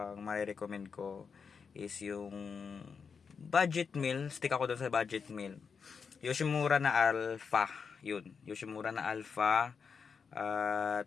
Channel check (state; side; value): quieter; right; 5.8 dB